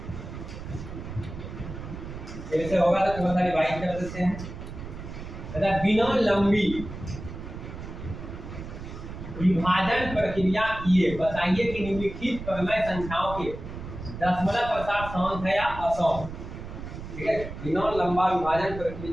ऐसे होगा तो थोड़ा सा डिवाइड कर देते हैं। तथा बिना लंबी विभाजन प्रक्रिया किए बताइए कि निम्नलिखित परमय संख्याओं के दशमलव प्रसार समान है या असमान, ठीक है। बिना लंबा विभाजन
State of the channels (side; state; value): right; noise; rumble, 10 dB below the sound